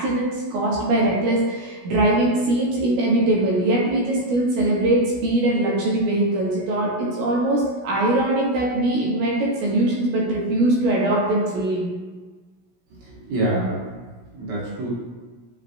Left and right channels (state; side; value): late; left; 16 ms